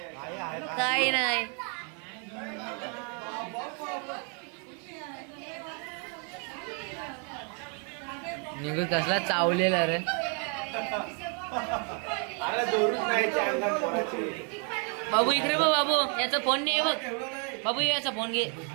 काही नाही निघू कसला चावलेला रे बाबू इकडे बघ बाबू याचा फोन नाही बघ बाबू याचा फोन घे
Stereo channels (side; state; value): left; quieter; 38.1 dB